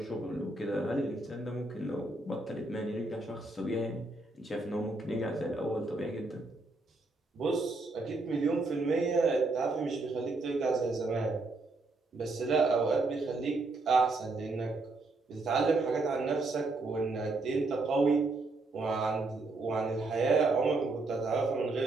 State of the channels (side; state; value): left; quieter; 3.3 dB